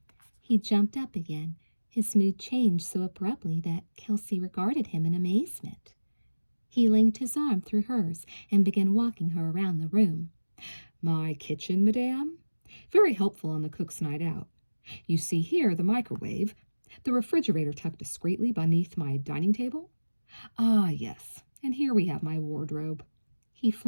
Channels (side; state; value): both; inverted; correlation -1.00